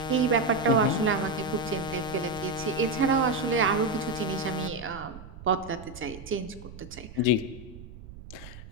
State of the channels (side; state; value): right; noise; rumble, 16 dB below the sound